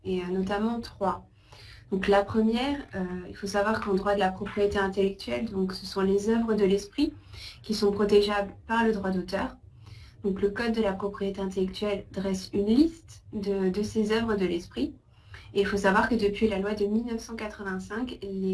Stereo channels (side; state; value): both; identical; correlation 1.00